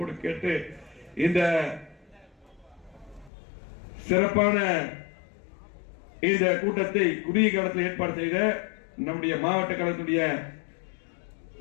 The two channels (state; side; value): drops out; right; at 3.3 s